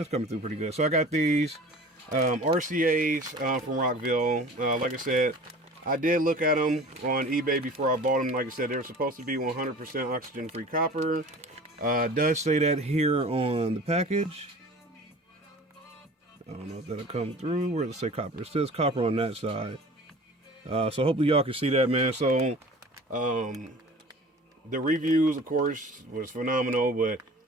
coming through pretty good. So I got these RCAs from Rockville. Like I said, I did look at them on eBay before I bought them. Like I said, they're supposed to be 100% oxygen-free copper. It does say that here on the package. I don't know if that'll come through. Where does it say copper? It says copper on that side. So hopefully y'all can see that, man. So the reviews, of course, was phenomenal, but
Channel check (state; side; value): normal; both; correlation 0.42